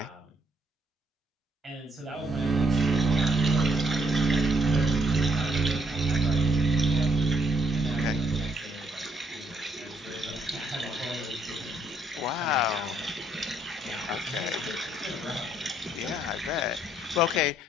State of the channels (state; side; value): normal; both; correlation 0.70